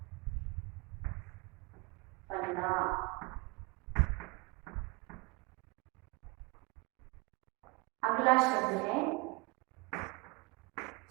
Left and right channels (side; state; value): left; quieter; 26.8 dB